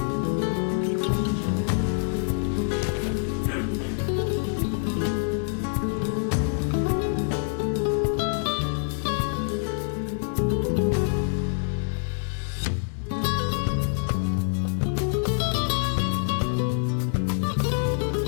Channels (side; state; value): right; silent; digital silence